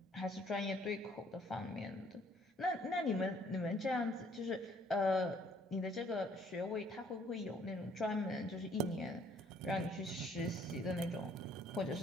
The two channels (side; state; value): both; normal; correlation 0.62